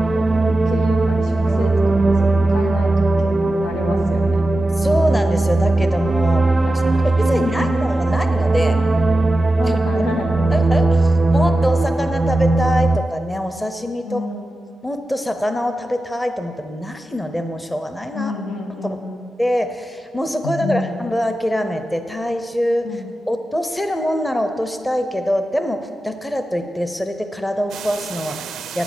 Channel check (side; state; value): both; normal; correlation 0.92